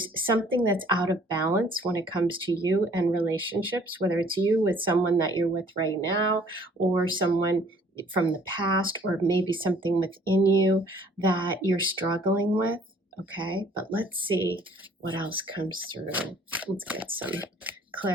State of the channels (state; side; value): normal; both; correlation 0.57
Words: something that's out of balance when it comes to you and relationships, whether it's you with someone that you're with right now or someone from the past, or maybe something within you that you're struggling with. Okay, but let's see what else comes through. Let's get some